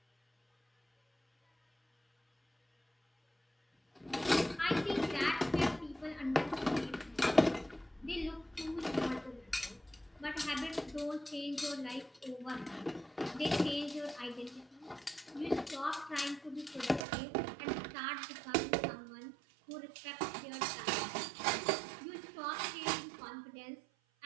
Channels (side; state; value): left; drops out; at 17.1 s